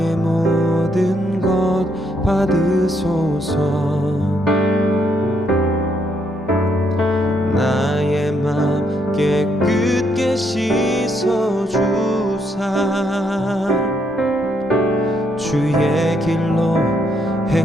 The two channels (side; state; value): both; normal; correlation 0.74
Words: 모든 것 받으소서. 나의 맘 깨끗게 씻어주사 주의 길로